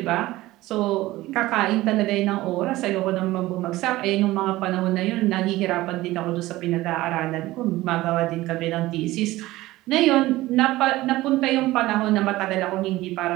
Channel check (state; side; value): quieter; left; 17.6 dB